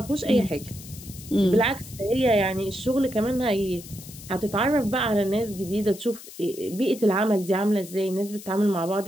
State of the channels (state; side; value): noise; left; hiss, 16 dB below the sound